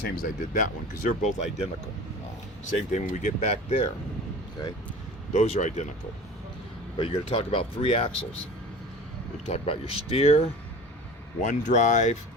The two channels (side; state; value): both; normal; correlation 0.38